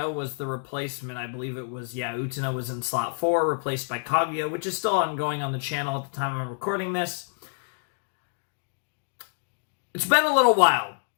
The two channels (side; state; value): right; silent; digital silence